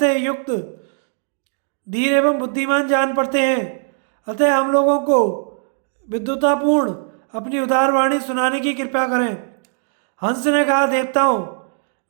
युक्त धीर एवं बुद्धिमान जान पड़ते हैं। अतः हम लोगों को विद्वतापूर्ण अपनी उदार वाणी सुनाने की कृपा करें। हंस ने कहा, देवताओं,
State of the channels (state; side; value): silent; left; digital silence